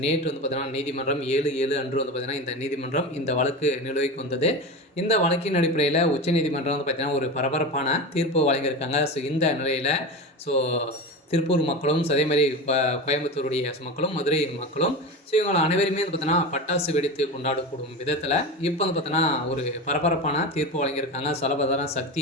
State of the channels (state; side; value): normal; both; correlation 0.25